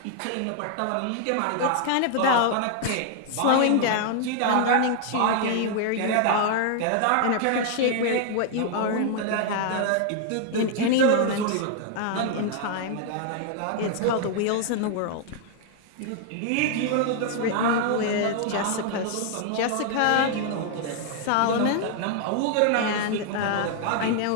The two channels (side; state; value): both; different; correlation 0.00